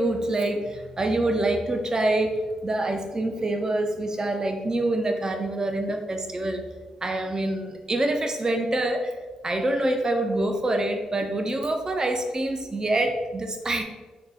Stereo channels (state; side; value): normal; both; correlation 0.84